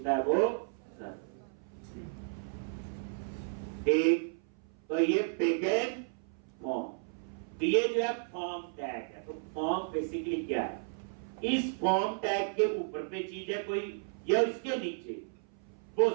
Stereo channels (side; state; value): left; silent; 55 dB below the other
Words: है, वो सर्वर। ठीक, तो ये बिगिन फॉर्म, तो ये जो है फॉर्म टैग है। तो फॉर्म बेसिकली क्या है, इस फॉर्म टैग के ऊपर पे चीज है कोई, या इसके नीचे, वो